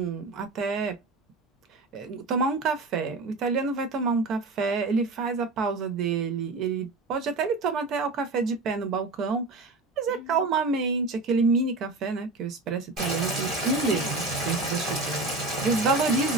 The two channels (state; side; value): quieter; left; 3.5 dB